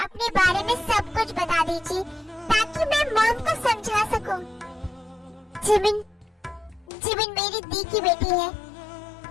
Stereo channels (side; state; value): right; drops out; at 6.9 s